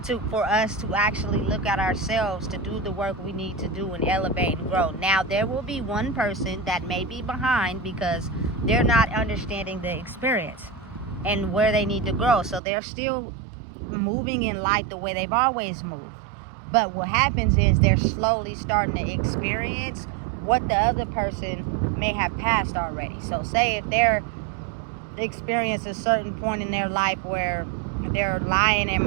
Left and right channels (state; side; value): drops out; left; at 12.6 s